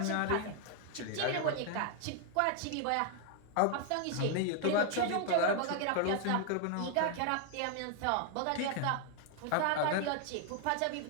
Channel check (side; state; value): both; different; correlation 0.00